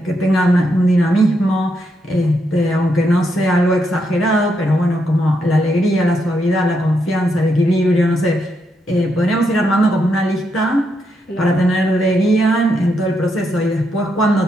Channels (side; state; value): both; normal; correlation 0.80